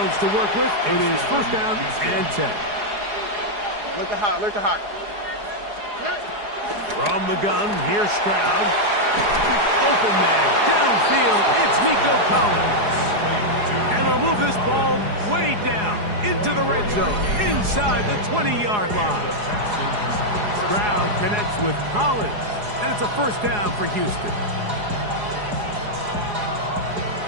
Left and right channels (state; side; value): late; left; 4.8 ms